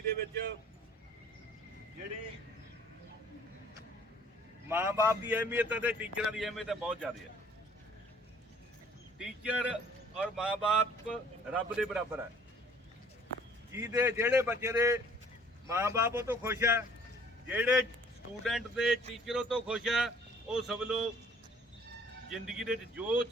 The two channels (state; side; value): normal; both; correlation 0.56